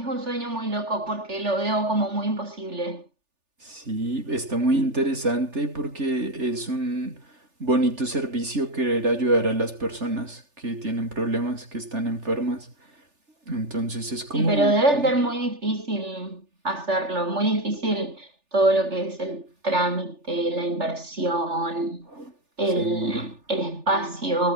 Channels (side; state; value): left; late; 3.4 ms